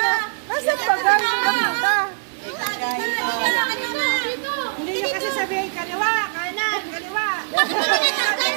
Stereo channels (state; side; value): silent; left; digital silence